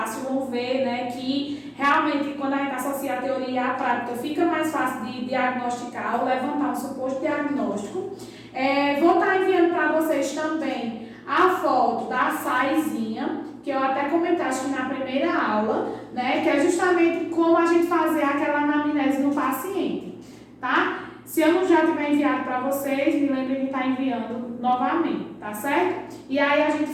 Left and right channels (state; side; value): identical; both; correlation 1.00